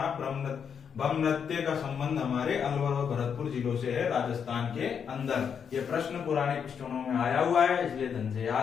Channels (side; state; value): right; quieter; 7.2 dB